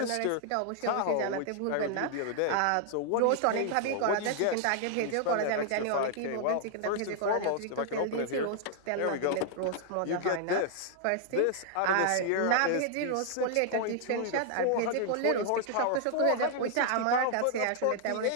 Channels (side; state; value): both; different; correlation 0.00